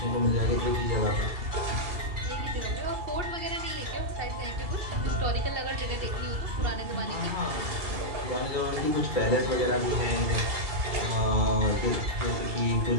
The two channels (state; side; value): late; left; 2.7 ms